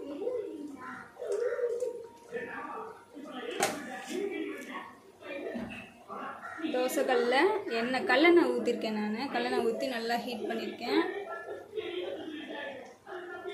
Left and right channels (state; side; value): identical; both; correlation 1.00